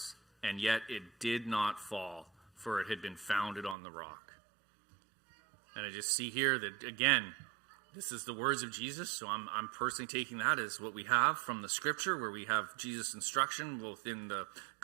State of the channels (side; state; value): left; drops out; at 3.8 s